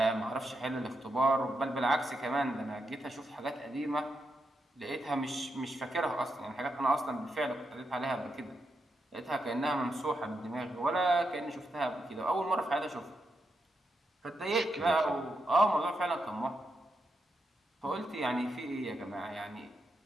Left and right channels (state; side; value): normal; both; correlation 0.84